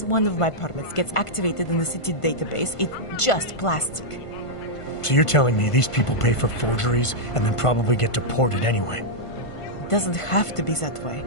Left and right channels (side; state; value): right; late; 1.5 ms